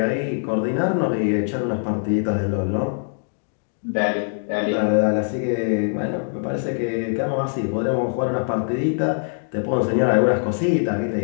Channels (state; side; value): silent; right; digital silence